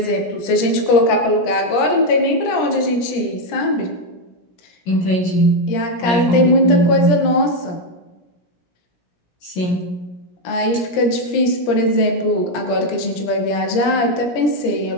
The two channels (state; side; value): late; right; 17 ms